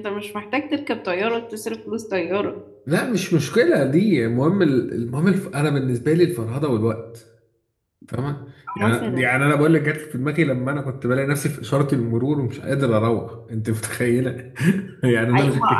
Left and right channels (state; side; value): identical; both; correlation 1.00